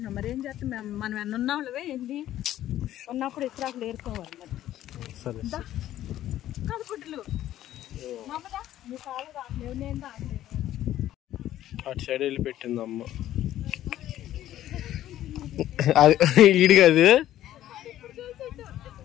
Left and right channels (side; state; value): right; quieter; 13.0 dB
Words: మరి ఏం చేస్తాం, మనం ఎన్న ఉన్నావులవే ఏంది ఉన్నప్పుడు ఇస్రాకులు ఏరుకోవాలి మరి. సరే కాదు గుడ్డలు మమ్మదా నీ కాలు రావట్లేవు, నేను రావట్లేదు. అటు సైడ్ వెళ్ళి పెట్టింది అమ్మ. అది ఈడు కాదు.